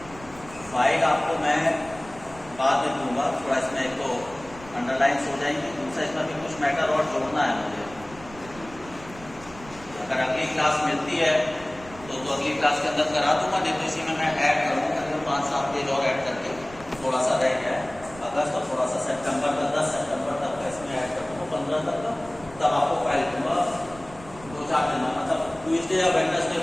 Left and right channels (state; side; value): noise; right; rumble, 19 dB below the sound